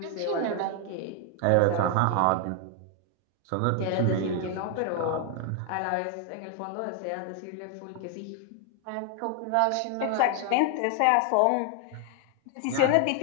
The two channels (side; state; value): both; different; correlation 0.00